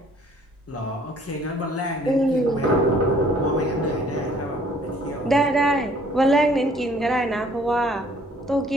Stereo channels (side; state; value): both; normal; correlation 0.58